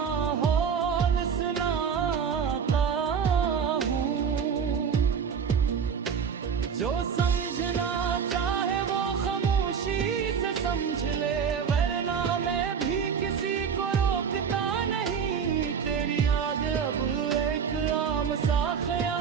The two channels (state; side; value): quieter; left; 6.8 dB